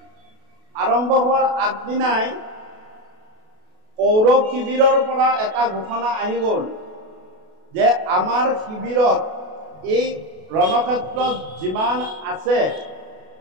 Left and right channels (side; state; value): left; late; 32 ms